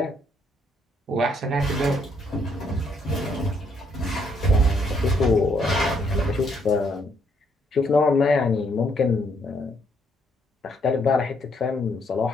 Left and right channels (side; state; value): both; normal; correlation 0.70